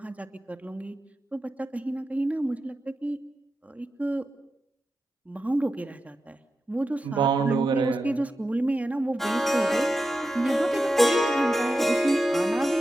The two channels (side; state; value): both; normal; correlation 0.91